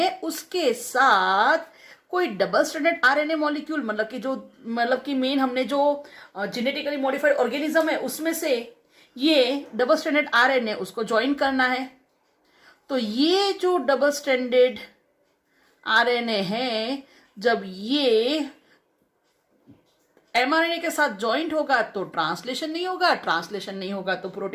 उसके साथ कोई डबल स्ट्रैंडेड आरएनए मॉलिक्यूल, मतलब कि मेन हमने जो जेनेटिकली मॉडिफाइड ऑर्गेनिज्म है उसमें से ये डबल स्ट्रैंडेड आरएनए उसको ज्वाइन करना है। तो ये जो डबल स्ट्रैंडेड आरएनए है जब ये एमआरएनए के साथ ज्वाइंट होगा तो ट्रांसलेशन नहीं होगा, ट्रांसलेशन नहीं होगा तो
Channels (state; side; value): identical; both; correlation 1.00